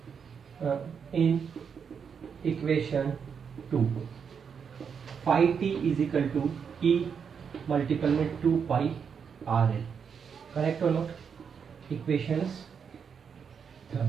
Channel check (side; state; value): left; quieter; 6.7 dB